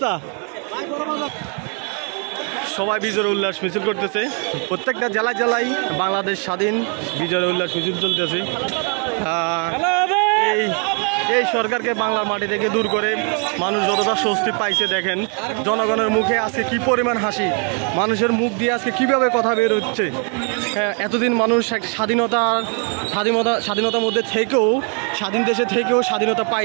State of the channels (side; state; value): left; quieter; 39.6 dB